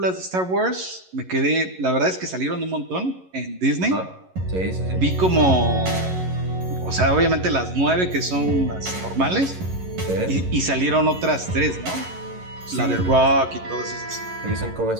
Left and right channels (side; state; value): left; late; 11 ms